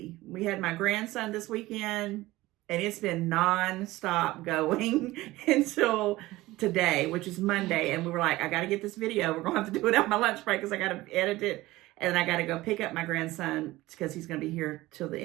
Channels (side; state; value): left; quieter; 18.3 dB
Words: We had my grandson this weekend, and it's been non-stop going until today, which is Monday. And we were like, I got to get this video. We're going to have to do it on my lunch break because I got to edit it. And I got to go pick up my grandson because he's going to be here till the